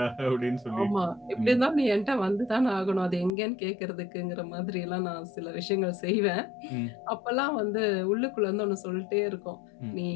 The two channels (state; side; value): drops out; right; at 3.3 s